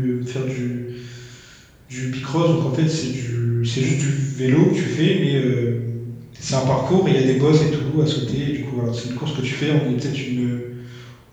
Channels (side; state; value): both; identical; correlation 1.00